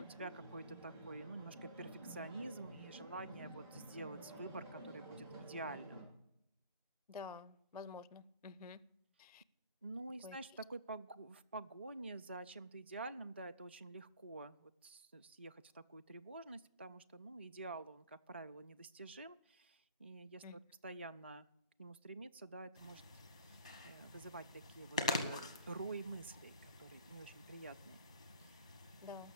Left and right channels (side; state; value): both; inverted; correlation -0.49